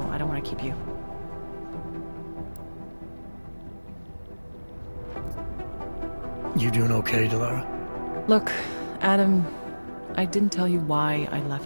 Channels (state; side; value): inverted; both; correlation -1.00